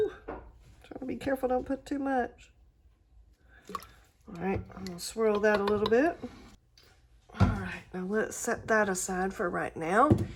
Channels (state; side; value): identical; both; correlation 1.00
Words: Try to be careful, don't put too much. All right, I'm gonna swirl that a little bit. All right, now let's set that aside for right now.